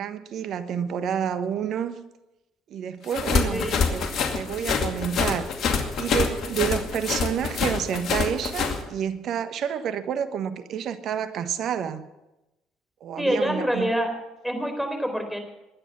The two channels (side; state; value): both; normal; correlation 0.65